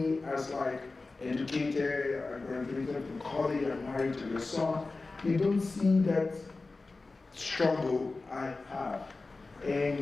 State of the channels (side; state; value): right; quieter; 3.6 dB